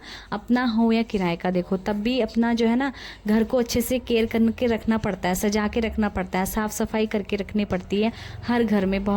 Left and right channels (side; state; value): both; identical; correlation 1.00